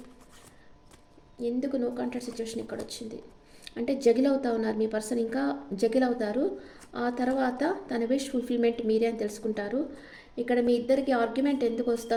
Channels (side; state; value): both; identical; correlation 1.00